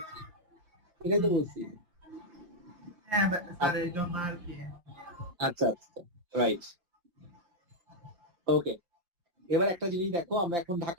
এটাই তো বলছি। হ্যাঁ স্যার, এই জন্য আর কি। আচ্ছা আচ্ছা, রাইট। ওকে, এবার একটা জিনিস দেখো, আমরা এখন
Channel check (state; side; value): late; left; 5.7 ms